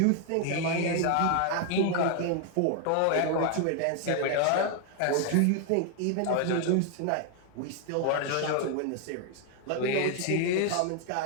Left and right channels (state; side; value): different; both; correlation 0.00